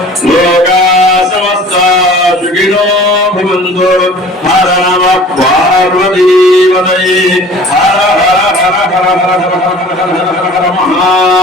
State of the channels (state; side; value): normal; both; correlation 0.46